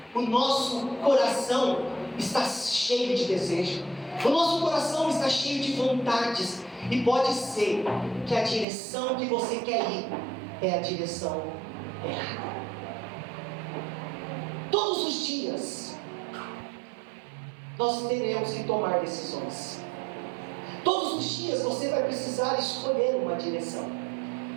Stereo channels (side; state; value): left; drops out; at 8.7 s